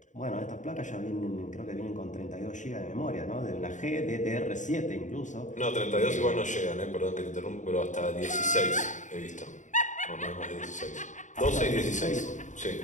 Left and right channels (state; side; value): late; right; 0.36 ms